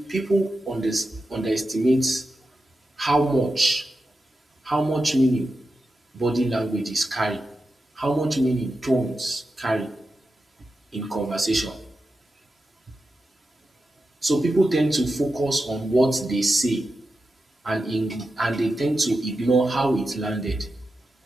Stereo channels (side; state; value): both; normal; correlation 0.90